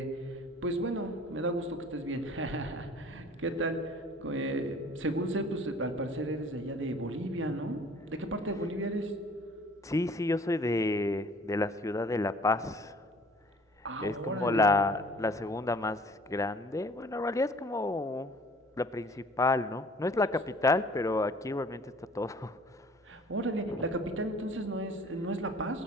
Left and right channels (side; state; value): both; normal; correlation 0.51